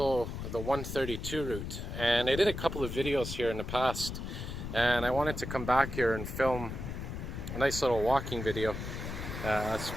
the 132 route. And I did a couple of videos here in the past, and I wanted to come back here and film a nice little walking video.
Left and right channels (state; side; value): noise; left; rumble, 6 dB below the sound